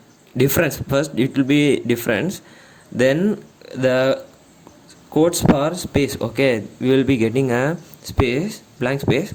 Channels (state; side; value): identical; both; correlation 1.00